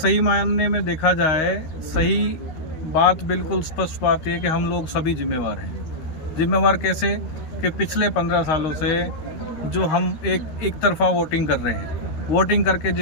मायने में देखा जाए, सही बात, बिल्कुल स्पष्ट बात यह है कि हम लोग सभी जिम्मेवार हैं। जिम्मेवार कैसे कि पिछले 15 सालों से जो हम एक तरफा वोटिंग कर रहे हैं, वोटिंग करके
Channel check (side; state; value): right; late; 13 ms